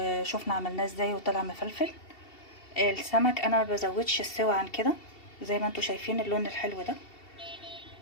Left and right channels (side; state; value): right; late; 2.7 ms